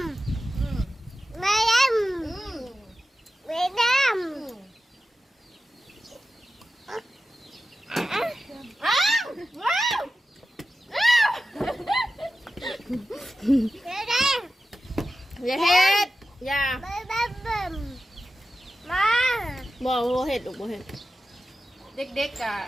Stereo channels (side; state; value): both; normal; correlation 0.92